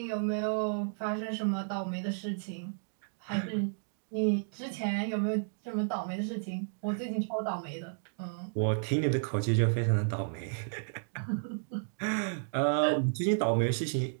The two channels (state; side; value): silent; left; digital silence